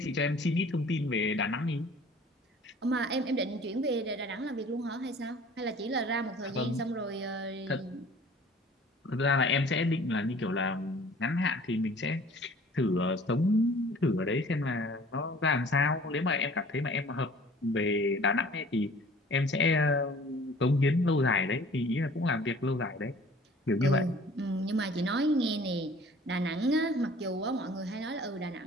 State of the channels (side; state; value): both; normal; correlation 0.49